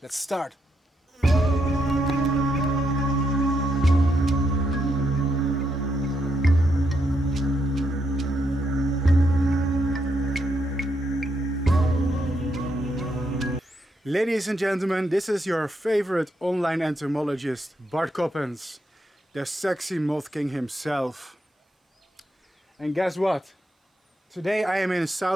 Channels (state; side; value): normal; both; correlation 0.79